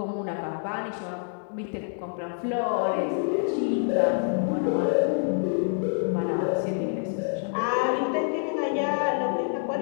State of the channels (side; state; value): right; silent; digital silence